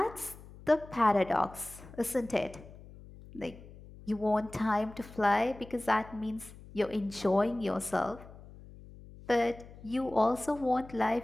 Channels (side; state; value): left; noise; hum, 18 dB below the sound